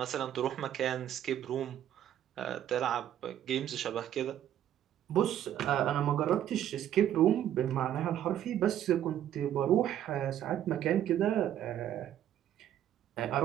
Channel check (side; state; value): left; quieter; 11.0 dB